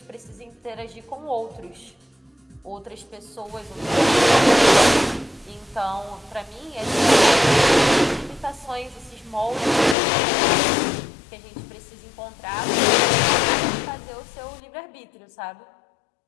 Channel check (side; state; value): right; drops out; at 10.0 s